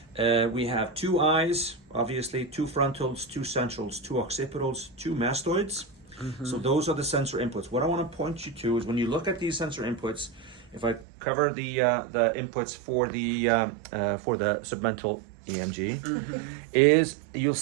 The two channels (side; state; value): left; drops out; at 11.1 s